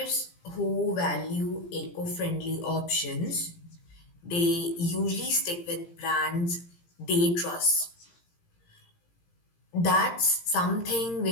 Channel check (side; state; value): right; late; 17 ms